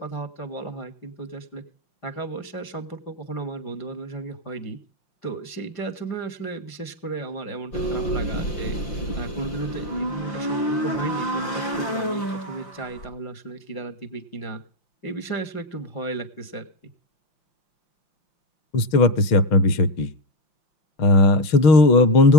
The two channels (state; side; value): late; right; 5.7 ms